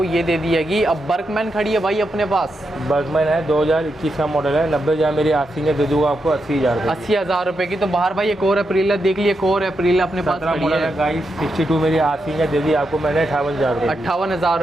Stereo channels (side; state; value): both; normal; correlation 0.85